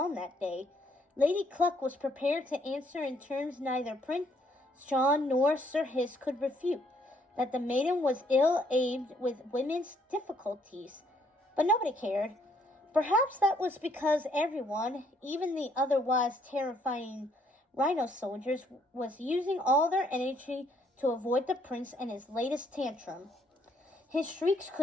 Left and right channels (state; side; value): normal; both; correlation 0.68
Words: that day. Lady Cluck was prepared to answer in terms neither Prince John nor Sir Hiss could refute, that the maiden was ill-aimed with women's difficulties. But nobody cared. Perhaps that was because everyone, even the otherwise terrifying rhino soldiers, was using all their energy to avoid the prince and his latest tantrum. His shrieks